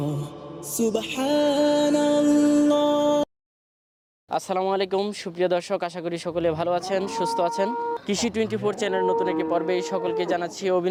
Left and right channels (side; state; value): both; identical; correlation 1.00